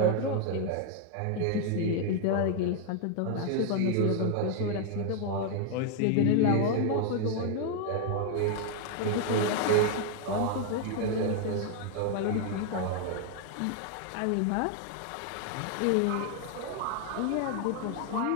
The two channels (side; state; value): both; different; correlation 0.01